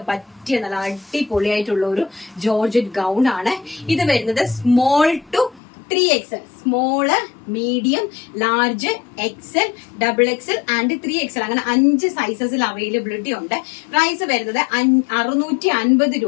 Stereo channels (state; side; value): drops out; right; at 5.6 s